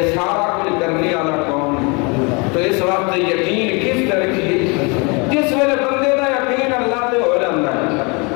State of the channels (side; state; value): right; quieter; 30.5 dB